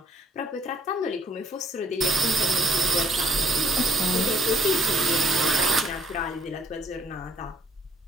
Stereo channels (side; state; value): both; normal; correlation 0.64